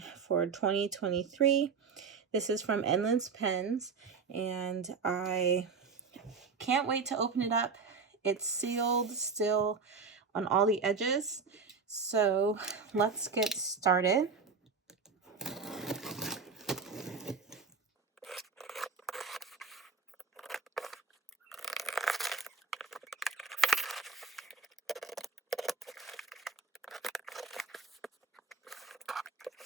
for 2023. This is from Endless Pens and I can't wait to open it up. It's sealed still on all the edges, so let's get started.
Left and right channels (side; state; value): left; quieter; 5.1 dB